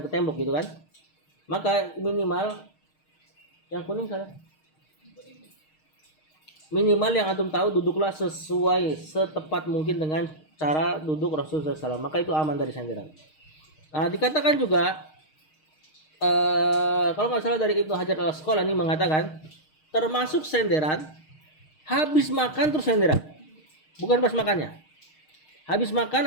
tembok gitu kan. Maka minimal yang kuning salah. Minimal yang antum tahu, duduklah sesuai setepat mungkin dengan cara duduk Rasulullah SAW, maka itu aman dari senderan. Nah, dikatakan juga kalau nggak salah dari Ibnu Hajar Al-Asqalani mengatakan, termasuk senderan habis makan terus senderan, bukan pas makannya. Habis makan,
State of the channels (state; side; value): late; right; 6.5 ms